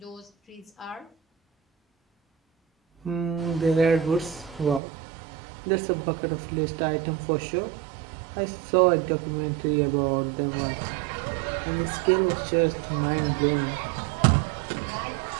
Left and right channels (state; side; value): drops out; left; at 4.8 s